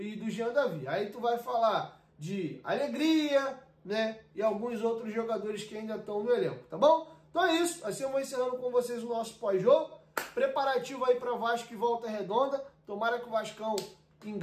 do Jean Davi. Aí tu vai falar de Alegria, né, e alguns outros jogadores que ainda estão no elenco, tá bom? Então é isso, assim eu vou encerrando com vocês o nosso pós-jogo, preparativo aí para Vasco e Volta Redonda, tomara que o Vascão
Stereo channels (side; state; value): both; identical; correlation 1.00